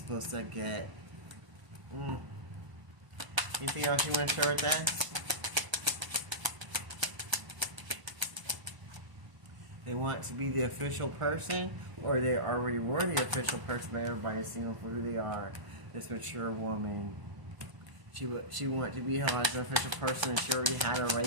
to get. Anything else you want to share with us? They want to be the official person, or they already were the official person, but everybody's seeing them for who they are. This mature woman. She wanted to be held as an official person, and she already had her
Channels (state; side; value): late; left; 1.0 ms